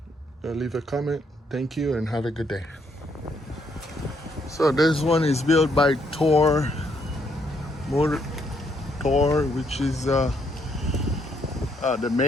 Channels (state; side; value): normal; both; correlation 0.73